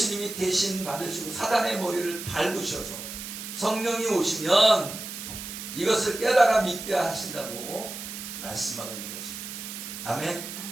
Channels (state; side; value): noise; right; hiss, 9 dB below the sound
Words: 대신 받으시고 사단의 머리를 밟으셔서 성령이 오시면 이것을 깨달아 믿게 하신다고 말씀하고 있는 것입니다. 아멘.